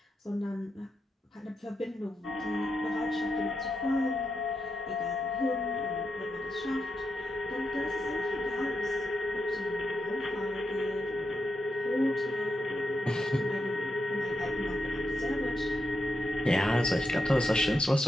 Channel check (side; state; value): both; normal; correlation 0.86